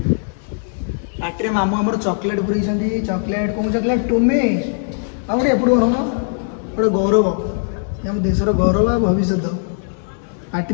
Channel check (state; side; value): silent; right; digital silence